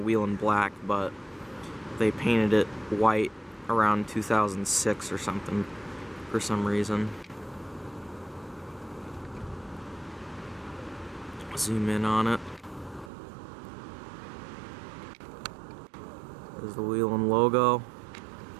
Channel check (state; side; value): drops out; left; at 13.1 s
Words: wheel in black, but they painted it white around 2006 or something, for some reason. Zoom in on it. There's the wheel and logo.